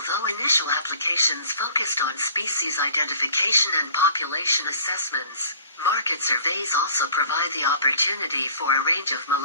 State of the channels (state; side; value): inverted; both; correlation -0.50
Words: initial applications focused on species identification and population assessments, market surveys also provide the opportunity for a range of